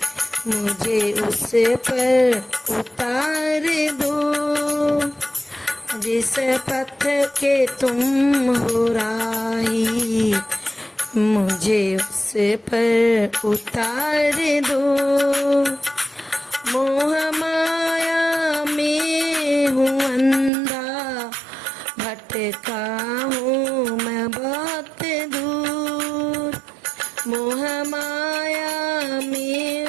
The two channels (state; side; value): drops out; left; at 20.5 s